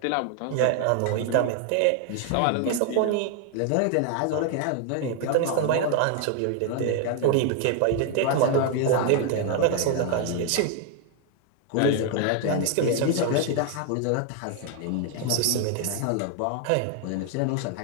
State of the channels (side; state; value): both; different; correlation 0.00